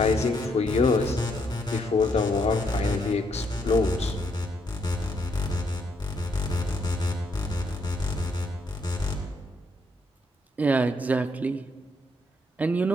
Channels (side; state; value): both; normal; correlation 0.75